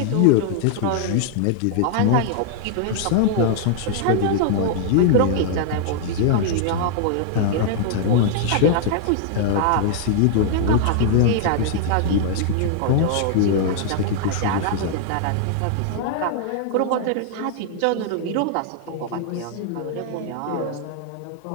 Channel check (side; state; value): both; different; correlation 0.00